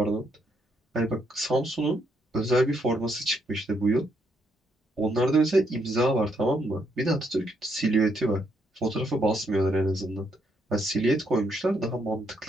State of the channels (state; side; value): normal; both; correlation 0.75